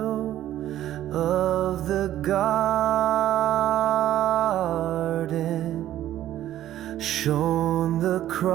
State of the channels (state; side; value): quieter; left; 12.8 dB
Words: of the garden shone the